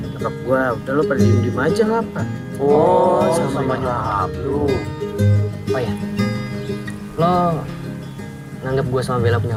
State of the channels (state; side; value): identical; both; correlation 1.00